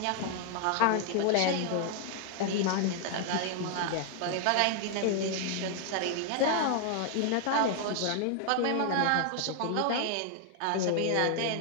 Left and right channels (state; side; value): different; both; correlation 0.00